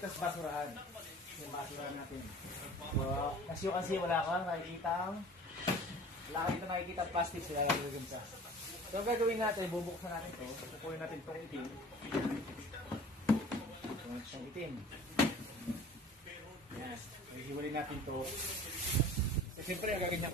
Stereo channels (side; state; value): both; normal; correlation 0.44